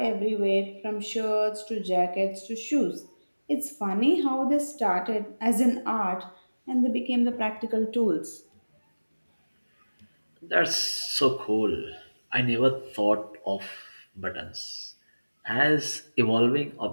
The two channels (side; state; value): both; inverted; correlation -1.00